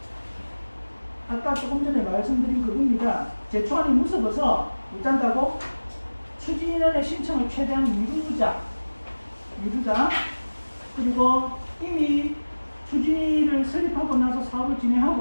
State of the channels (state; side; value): inverted; both; correlation -1.00